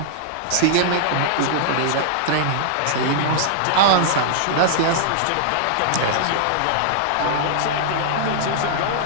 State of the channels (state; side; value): different; both; correlation -0.01